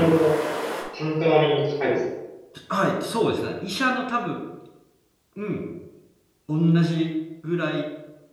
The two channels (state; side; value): identical; both; correlation 1.00